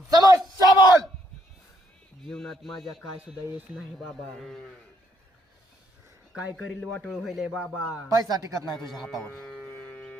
समस्या बोल. जीवनात माझ्या काय सुद्धा येत नाही बाबा. काय करील वाटोळ होईल बाबा. पैसा टिकत नाही तुझ्या हातावर.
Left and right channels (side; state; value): both; normal; correlation 0.72